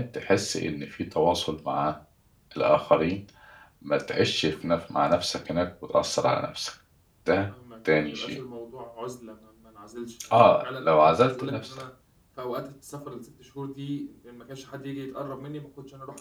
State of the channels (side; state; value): both; identical; correlation 1.00